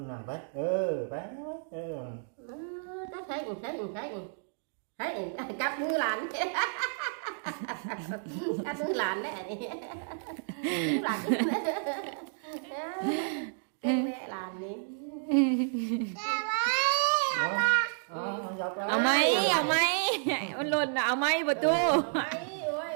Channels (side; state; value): left; silent; digital silence